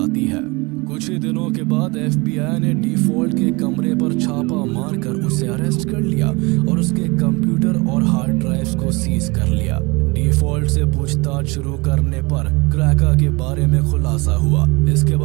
है। कुछ ही दिनों के बाद FBI ने डिफॉल्ट के कमरे पर छापा मारकर उसे अरेस्ट कर लिया और उसके कंप्यूटर और हार्ड ड्राइव्स को सीज कर लिया। डिफॉल्ट से पूछताछ शुरू करने पर क्रैका के बारे में खुलासा हुआ। इसके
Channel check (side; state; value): left; quieter; 25.9 dB